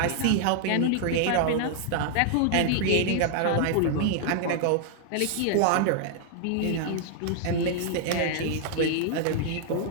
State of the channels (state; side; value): different; both; correlation -0.01